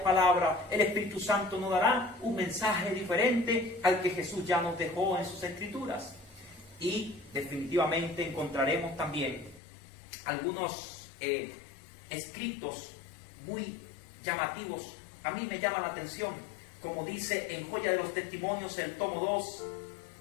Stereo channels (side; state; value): right; drops out; at 9.6 s